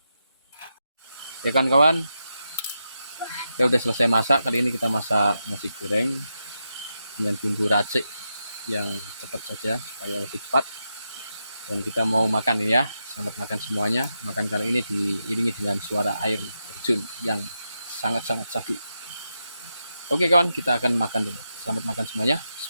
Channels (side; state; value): both; inverted; correlation -0.87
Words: Ya kan kawan, kita udah selesai masak. Kali ini kita masak nasi goreng dengan bumbu racik yang cepat saja supaya lebih cepat. Dan kita mau makan ini ya. Selamat makan semuanya. Makan kali ini diiringi dengan suara air terjun yang sangat-sangat syahdu. Oke kawan, kita akan makan dulu. Selamat makan semuanya.